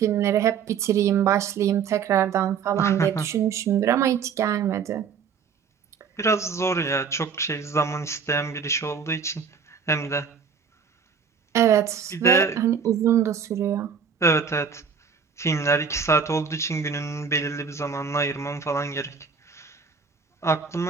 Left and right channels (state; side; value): quieter; left; 6.4 dB